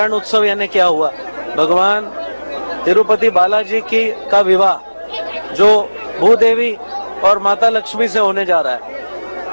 उत्सव यानी क्या हुआ? भगवान तिरुपति बालाजी का विवाह जो भूदेवी और माता लक्ष्मी से होने जा रहा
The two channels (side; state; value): both; inverted; correlation -1.00